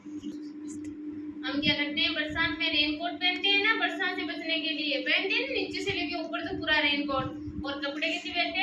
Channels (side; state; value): both; identical; correlation 1.00